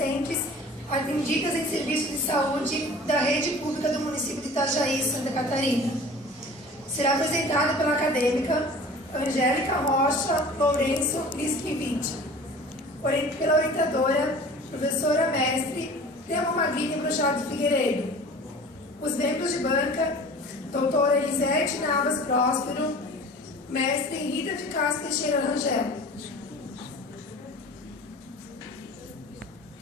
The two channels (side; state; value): both; normal; correlation 0.42